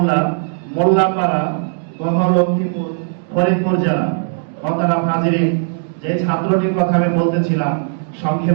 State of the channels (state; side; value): silent; left; 68 dB below the other